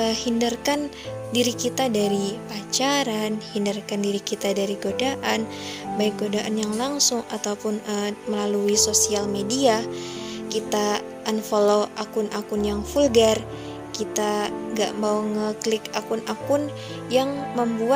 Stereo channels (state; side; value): identical; both; correlation 1.00